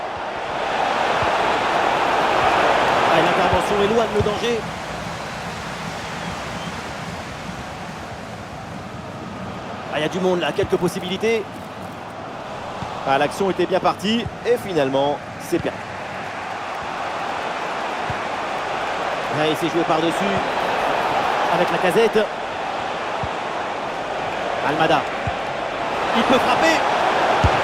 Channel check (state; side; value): identical; both; correlation 1.00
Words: L'intervention éloigne le danger. Il y a du monde là, quelques possibilités. L'action était bien partie et finalement c'est perdu. Il s'est joué par-dessus avec Lacazette. Almada. Il peut frapper.